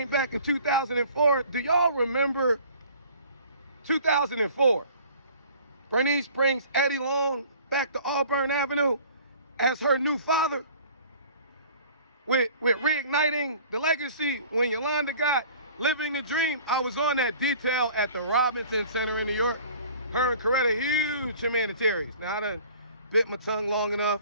back in 2004. Do y'all remember 2004? Bernice brings Eddie Long back to Auburn Avenue as her new father, with reigniting the legacy. When Yolanda got Living the Dream, I was on that detail at the Robinson Center in New York. Her and Coretta, huge humanitarians. Now, I done bit my tongue long enough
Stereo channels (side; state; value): both; inverted; correlation -0.49